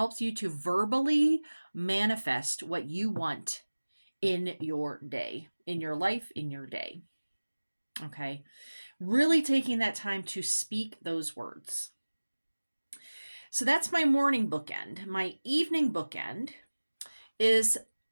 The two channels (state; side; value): inverted; both; correlation -1.00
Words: you to verbally manifest what you want in your day, in your life, in your day. Okay. Really taking that time to speak those words. So that's my morning bookend. My evening bookend is